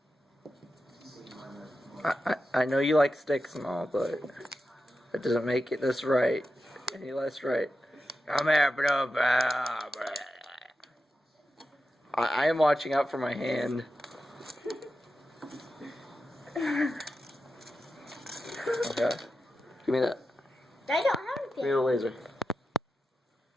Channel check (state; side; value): normal; both; correlation 0.90